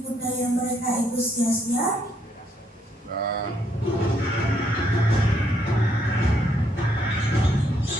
daya mereka itu sia-sia?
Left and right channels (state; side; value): normal; both; correlation 0.72